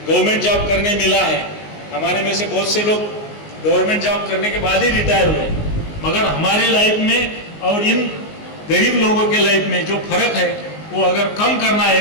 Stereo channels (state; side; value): late; right; 19 ms